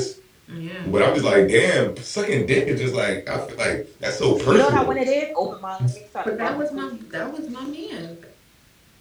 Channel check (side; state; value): both; identical; correlation 1.00